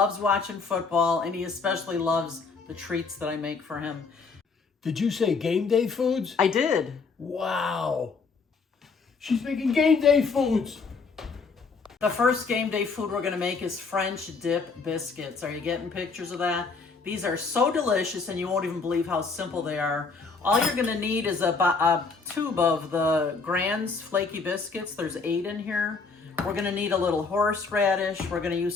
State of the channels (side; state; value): right; quieter; 4.6 dB